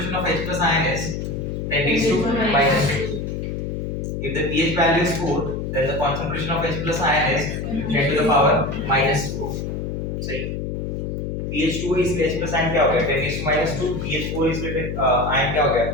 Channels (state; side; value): noise; left; hum, 4 dB below the sound